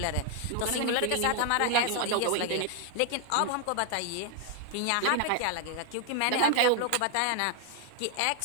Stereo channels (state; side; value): different; both; correlation 0.00